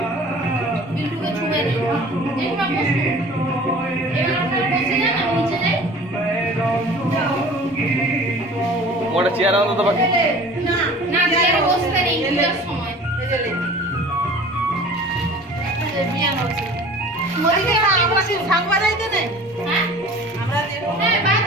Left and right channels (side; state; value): both; normal; correlation 0.44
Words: বিল্টুকে ছুঁয়ে নেই। দেখবা বসো। এবার আপনারা বসে যান, আমি নিচে যাই। ওটা চেয়ার আনো তো বাকি। না না, চেয়ারে বসতে নেই পূজার সময়। মরিকে আমরা কি শাক বাজাইতে নেই? হ্যাঁ আমরা যে হ্যাঁ,